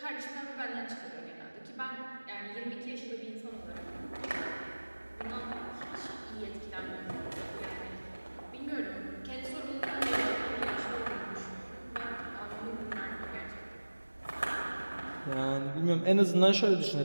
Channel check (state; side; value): inverted; both; correlation -1.00